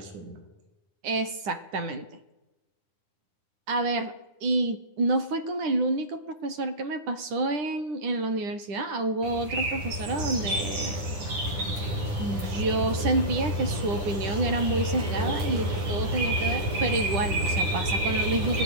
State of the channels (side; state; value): left; late; 10 ms